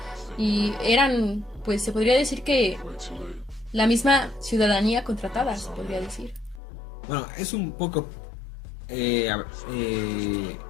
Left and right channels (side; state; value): right; drops out; at 6.6 s